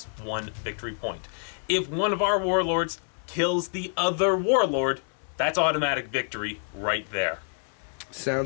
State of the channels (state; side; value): silent; right; 60 dB below the other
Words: victory point. If one of our warlords kills the other warlord, that's automatic victory right there.